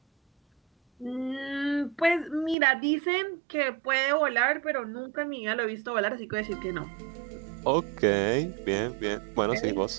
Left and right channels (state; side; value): drops out; left; at 2.6 s